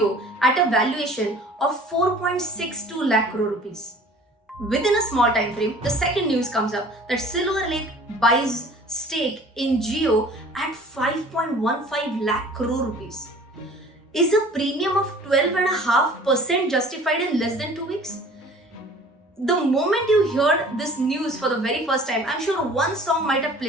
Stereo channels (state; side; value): normal; both; correlation 0.48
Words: at a valuation of 4.62 lakh crore rupees. Within a small time frame, the second news comes up that Silver Lake buys stake in Jio at 5.15 lakh crore rupees. Is a premium of 12.5% justified in less than 2 weeks? The moment you heard this news for the very first time, I'm sure one song might have